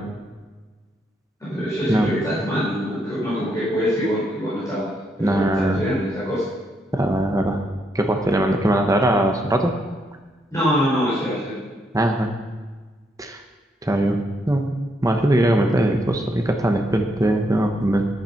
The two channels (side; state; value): both; normal; correlation 0.77